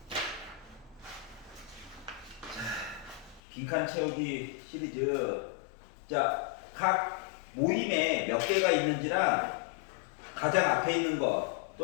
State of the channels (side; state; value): right; drops out; at 3.4 s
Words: 자, 빈칸 채우기 시리즈. 자, 각 모임에 몇 개가 있는지랑 가장 앞에 있는 거